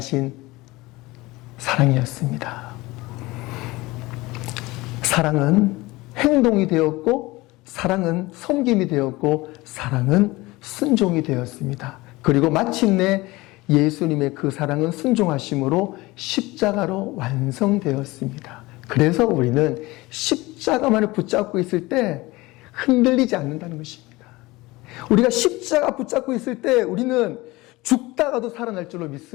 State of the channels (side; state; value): right; quieter; 21.0 dB